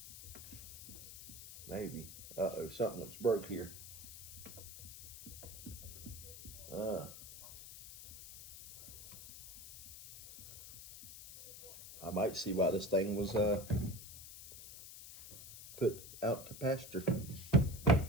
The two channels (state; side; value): noise; left; hiss, 13 dB below the sound